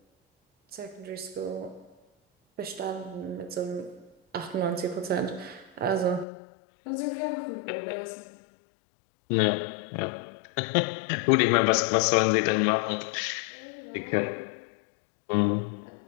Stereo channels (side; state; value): right; drops out; at 6.2 s